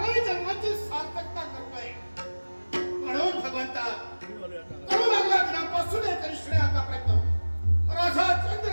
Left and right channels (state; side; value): inverted; both; correlation -1.00